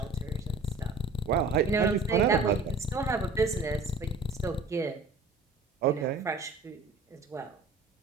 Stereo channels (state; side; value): quieter; left; 3.8 dB